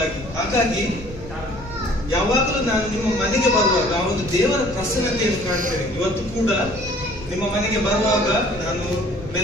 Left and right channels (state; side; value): noise; left; rumble, 15 dB below the sound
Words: ಹಾಗಾಗಿ ಯಾವಾಗಲೂ ನಾನು ನಿಮ್ಮ ಮನೆಗೆ ಬರುವಾಗ ಆ ಒಂದು ದೇವರ ಪ್ರಸನ್ನತೆಯನ್ನು ಕಾಣ್ತೇನೆ. ಇವತ್ತು ಕೂಡ ನಿಮ್ಮ ಮನೆಗೆ ಬರುವಾಗ ನಾನು